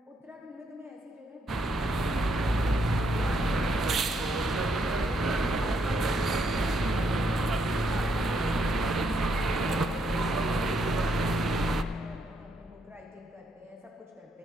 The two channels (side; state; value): both; normal; correlation 0.75